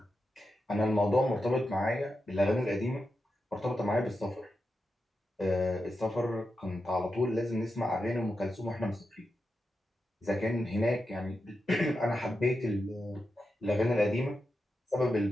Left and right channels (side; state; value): both; normal; correlation 0.88